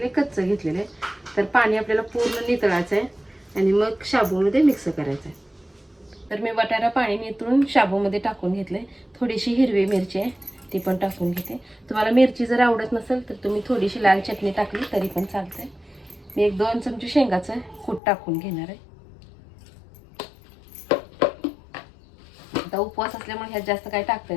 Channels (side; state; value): right; drops out; at 18.0 s